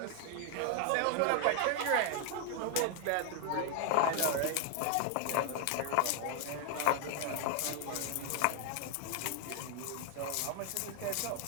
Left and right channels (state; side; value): different; both; correlation 0.00